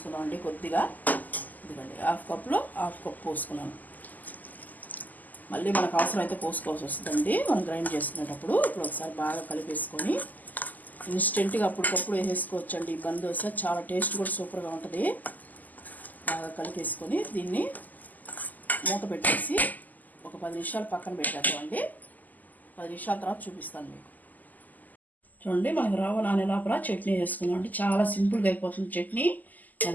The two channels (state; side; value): late; right; 0.082 ms